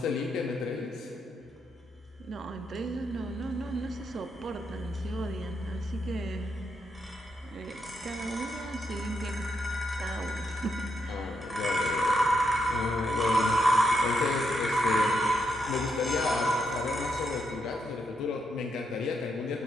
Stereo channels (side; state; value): both; normal; correlation 0.80